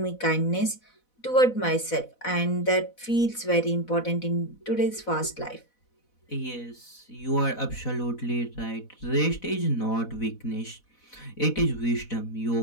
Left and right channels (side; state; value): right; late; 4.1 ms